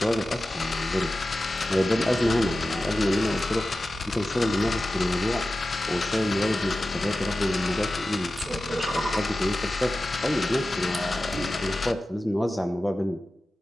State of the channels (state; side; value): normal; both; correlation 0.94